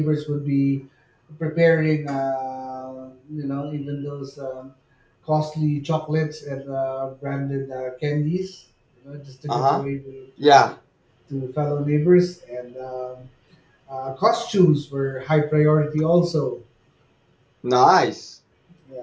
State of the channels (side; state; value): both; identical; correlation 1.00